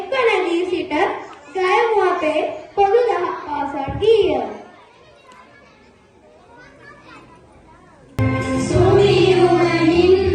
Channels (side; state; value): both; identical; correlation 1.00